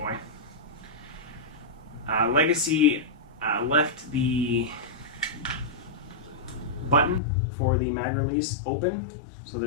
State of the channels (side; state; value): right; drops out; at 7.2 s